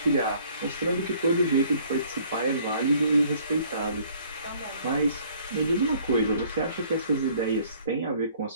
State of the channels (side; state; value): both; inverted; correlation -0.58